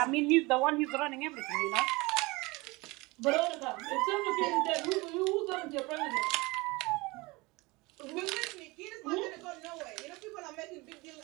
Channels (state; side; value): quieter; left; 23.7 dB